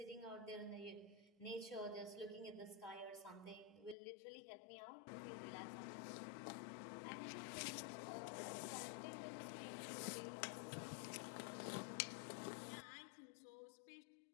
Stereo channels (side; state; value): right; drops out; at 4.0 s